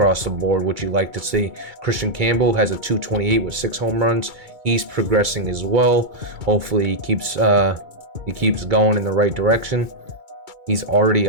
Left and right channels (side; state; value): left; late; 2.3 ms